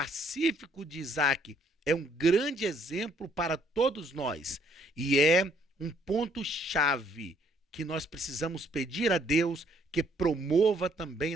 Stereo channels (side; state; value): both; normal; correlation 0.65